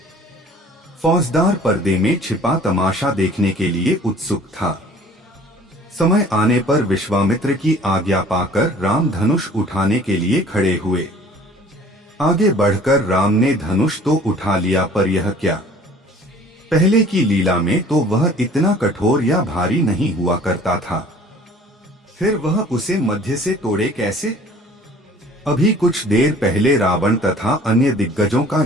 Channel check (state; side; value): normal; both; correlation 0.51